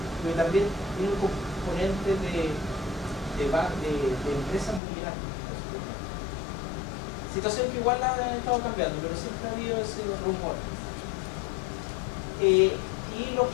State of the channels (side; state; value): right; drops out; at 4.8 s